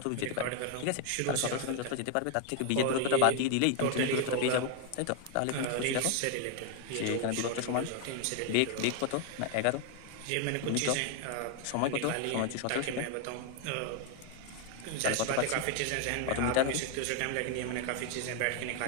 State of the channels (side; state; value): both; different; correlation 0.00